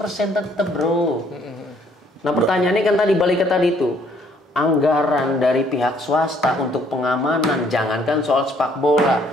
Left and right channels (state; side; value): normal; both; correlation 0.64